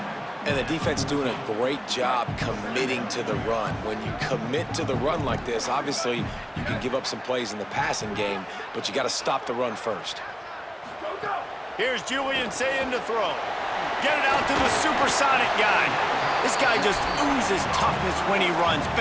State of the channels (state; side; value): identical; both; correlation 1.00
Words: And the defense doing a great job committing to the run. When you commit to the run like this, obviously you can give up some plays in the passing game, but you got to stop the run first. Here's Julian Sayin to throw. Get it out to the supersonic guy. This guy just oozes toughness when he runs,